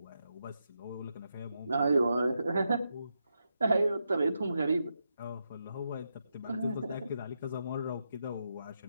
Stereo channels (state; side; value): inverted; both; correlation -0.85